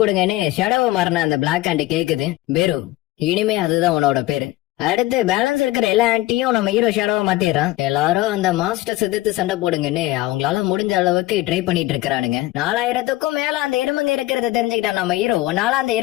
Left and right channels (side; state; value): right; quieter; 17.6 dB